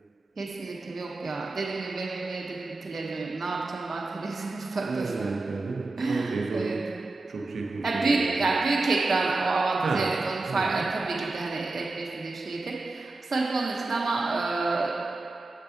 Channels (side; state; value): left; quieter; 3.3 dB